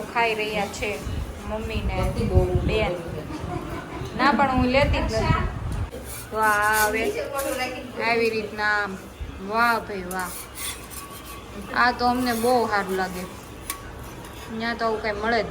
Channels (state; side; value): identical; both; correlation 1.00